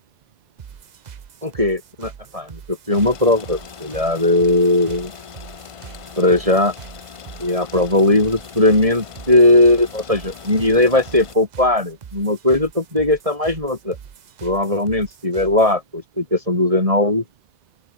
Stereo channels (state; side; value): late; left; 1.5 ms